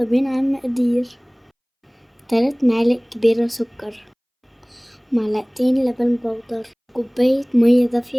بينا على المقادير. 3 معالق كبيرة سكر، معلقتين لبن بودر، كوباية مية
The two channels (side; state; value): both; identical; correlation 1.00